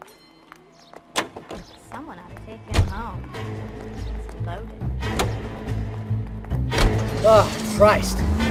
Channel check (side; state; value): both; identical; correlation 1.00